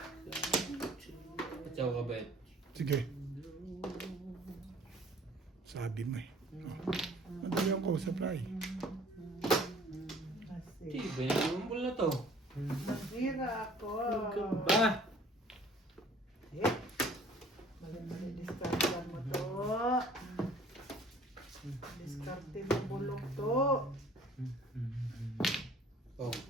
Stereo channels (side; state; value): both; normal; correlation 0.53